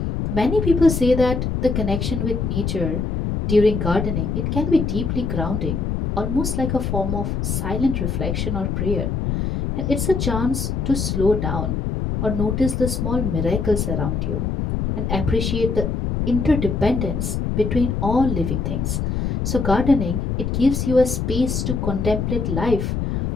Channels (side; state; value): left; noise; rumble, 1 dB below the sound